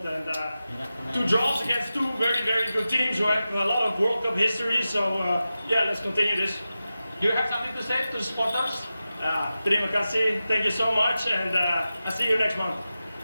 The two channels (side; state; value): both; inverted; correlation -0.93